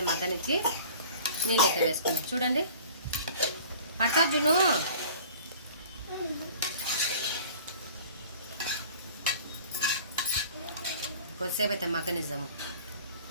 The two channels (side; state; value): both; inverted; correlation -0.46